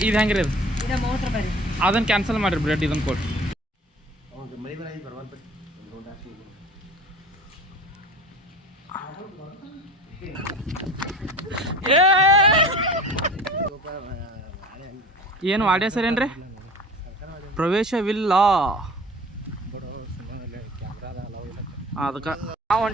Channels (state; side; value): normal; both; correlation 0.40